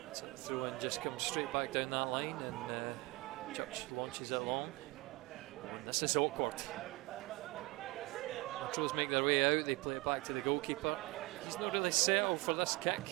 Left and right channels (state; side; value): quieter; left; 22.8 dB